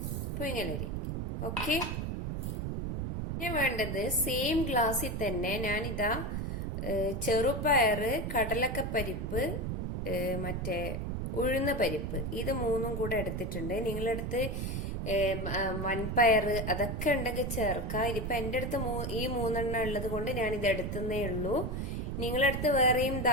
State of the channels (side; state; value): right; noise; rumble, 2 dB below the sound